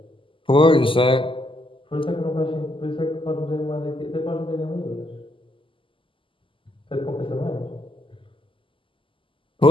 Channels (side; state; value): right; late; 0.25 ms